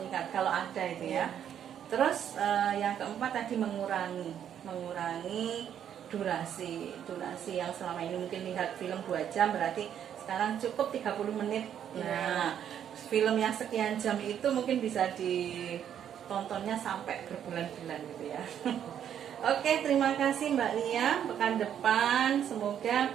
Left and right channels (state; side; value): quieter; left; 9.4 dB